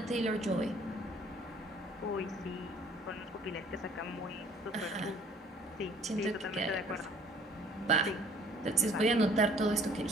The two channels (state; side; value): normal; both; correlation 0.55